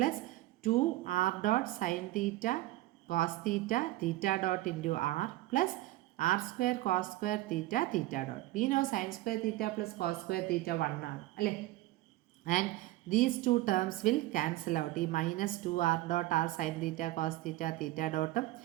2r dot sine theta cos theta theta dot into R plus R square cos square theta theta dot. We know sine square theta plus cos square തീറ്റ 1 ആണ് അല്ലേ. And these two terms will cancel out. ഈ minus 2r dot R sine theta cos theta theta ഡോട്ടും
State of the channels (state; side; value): quieter; left; 17.0 dB